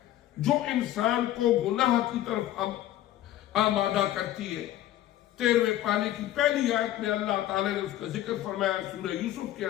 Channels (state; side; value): quieter; right; 13.5 dB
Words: جو انسان کو گناہ کی طرف آمادہ کرتی ہے. 13ویں پارے کی پہلی آیت میں اللہ تعالیٰ نے اس کا ذکر فرمایا سورہ یوسف کے